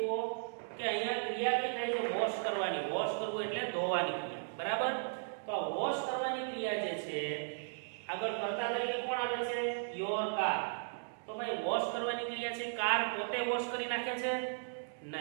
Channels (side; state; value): left; silent; digital silence